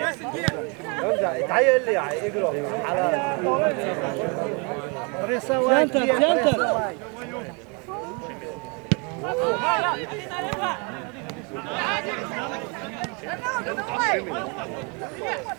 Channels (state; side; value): quieter; left; 33.2 dB